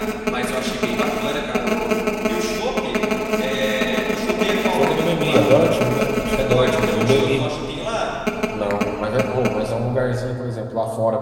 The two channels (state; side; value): identical; both; correlation 1.00